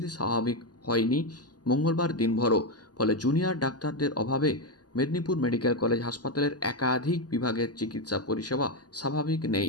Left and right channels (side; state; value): right; late; 0.69 ms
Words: স্বাভাবিক হয়নি মঙ্গলবার দিনভরও। ফলে জুনিয়র ডাক্তারদের অভাবে মেদিনীপুর মেডিকেল কলেজ হাসপাতালের একাধিক বিভাগের চিকিৎসা পরিষেবা স্বাভাবিক নেই।